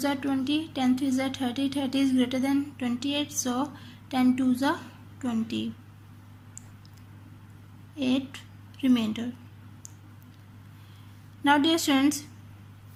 are 20, 10 threes are 30, 30 is greater than 28, so 10 twos are 20. 8 remainder. Now dear students,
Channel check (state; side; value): identical; both; correlation 1.00